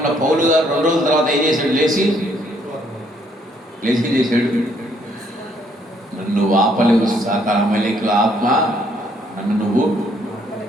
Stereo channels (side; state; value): both; normal; correlation 0.68